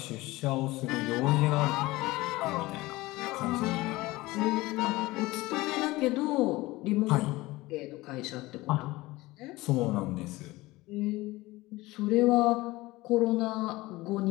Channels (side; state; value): right; quieter; 19.8 dB